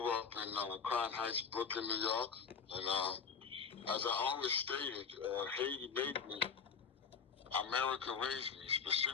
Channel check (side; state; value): right; quieter; 6.0 dB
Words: up in Crown Heights, Brooklyn, New York. And as I always stated, Haiti made me. America raised me,